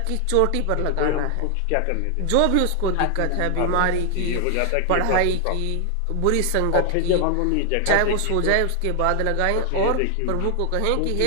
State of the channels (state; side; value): different; both; correlation 0.00